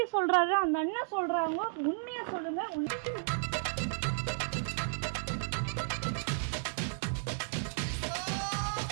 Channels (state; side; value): silent; left; 55 dB below the other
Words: சொல்றாரு, அந்த அண்ணன் சொல்றாங்க, உண்மையா சொல்லுங்க.